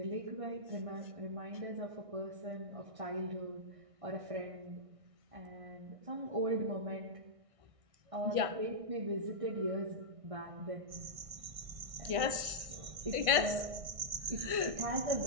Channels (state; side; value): late; left; 1.6 ms